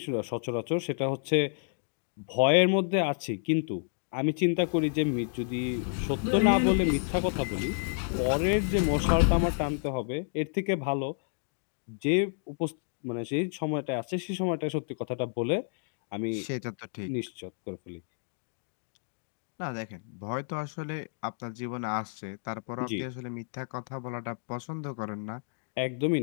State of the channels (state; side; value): silent; right; digital silence